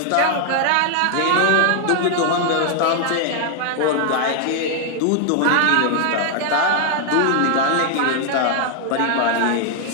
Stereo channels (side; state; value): both; different; correlation 0.00